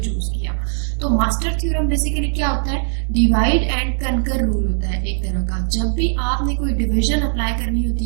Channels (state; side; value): silent; left; digital silence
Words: किया। तो मास्टर थ्योरम बेसिकली क्या होता है, डिवाइड एंड कनकर रूल होता है एक तरह का। जब भी आपने कोई डिवीजन अप्लाई करनी